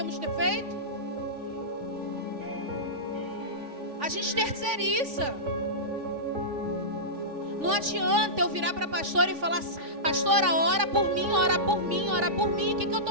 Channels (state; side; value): late; left; 3.5 ms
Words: ter feito? A gente terceiriza. Não adianta eu virar para a pastora e falar, pastora, ora por mim, ora por mim, ora por mim. O que eu